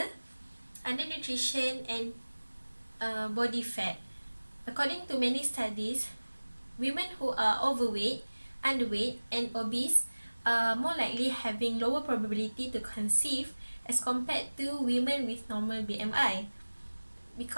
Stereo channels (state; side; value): inverted; both; correlation -1.00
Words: undernutrition and body fat. According to many studies, women who are overweight, underweight, and obese are more likely having lower probability to conceive as compared to women with normal BMI,